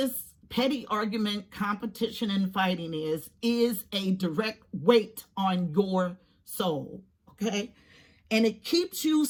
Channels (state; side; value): identical; both; correlation 1.00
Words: petty argument, competition, and fighting is a direct weight on your soul, okay? And it keeps you